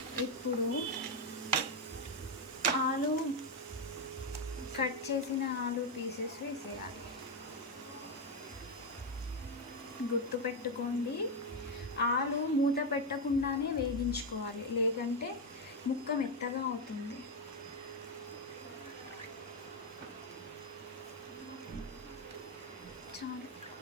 ఇప్పుడు ఆలు కట్ చేసిన ఆలు పీసెస్ వేసేయాలి. గుర్తుపెట్టుకోండి, ఆలు మూత పెట్టకుండానే వేగించుకోవాలి, లేదంటే ముక్క మెత్తగా అవుతుంది. చాలు,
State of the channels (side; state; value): both; normal; correlation 0.05